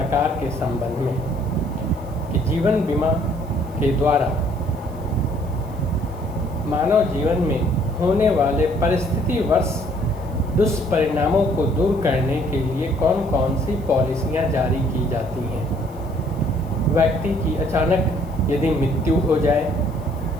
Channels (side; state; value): right; noise; hiss, 27 dB below the sound